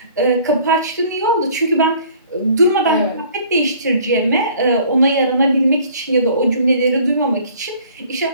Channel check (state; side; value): inverted; both; correlation -0.53